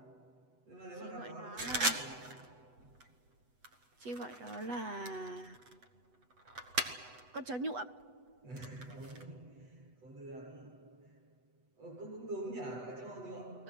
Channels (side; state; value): left; late; 8.1 ms